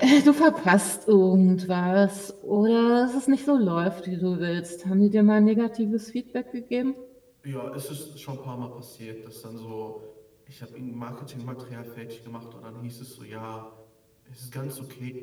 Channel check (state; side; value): identical; both; correlation 1.00